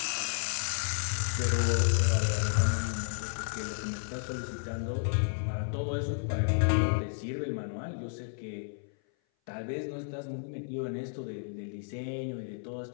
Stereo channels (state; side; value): silent; right; 56 dB below the other